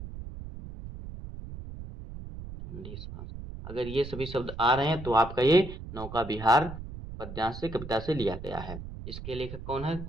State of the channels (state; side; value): noise; right; rumble, 11 dB below the sound